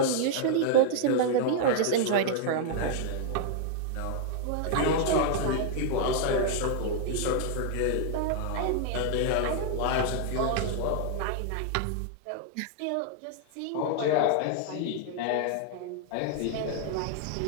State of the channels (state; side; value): different; both; correlation -0.01